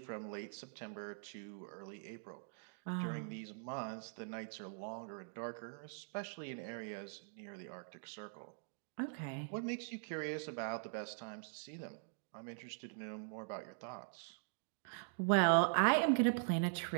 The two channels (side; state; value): left; silent; digital silence